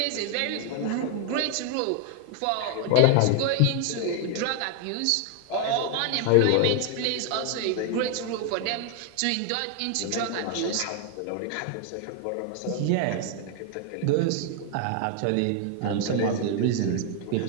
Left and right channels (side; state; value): both; different; correlation 0.00